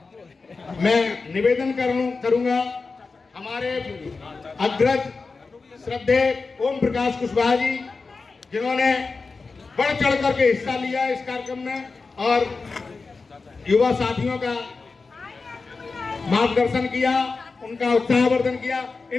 मैं निवेदन करूंगा हमारे अग्रज श्रद्धेय ओम प्रकाश कुशवाहा जी, जिन्होंने बढ़ चढ़ करके हिस्सा लिया इस कार्यक्रम में और युवा साथियों का मार्गदर्शन किया, उनका उत्साहवर्धन किया।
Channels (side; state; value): right; quieter; 4.2 dB